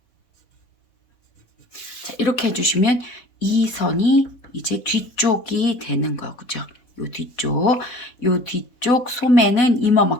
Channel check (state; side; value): late; right; 4.1 ms